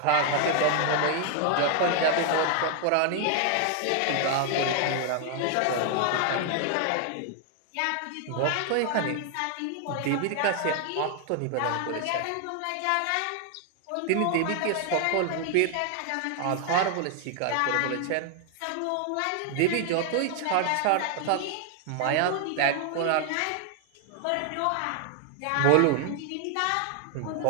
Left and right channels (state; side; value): different; both; correlation 0.00